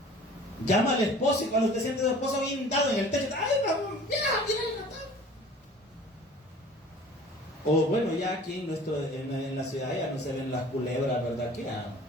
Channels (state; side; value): normal; both; correlation 0.46